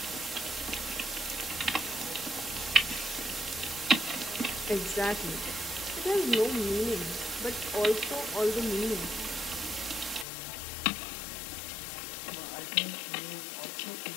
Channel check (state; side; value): drops out; right; at 10.2 s